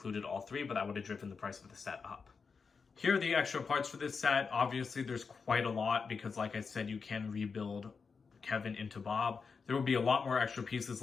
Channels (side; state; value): right; quieter; 5.2 dB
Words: all three, but that would have driven the price of the set up. Here are the extra parts for this set. Obviously, there's quite a lot because, like I said, you can rebuild Kevin into Bob. There will be a lot more extra pieces